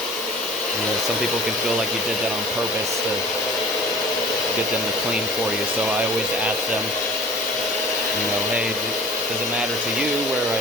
know, some people can feel like you did that on purpose to get them to clean for you. So I always ask them, you know, hey, does it matter to you where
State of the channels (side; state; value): both; normal; correlation 0.44